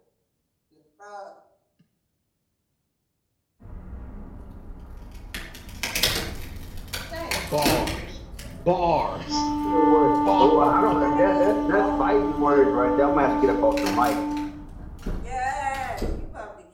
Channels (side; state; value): both; identical; correlation 1.00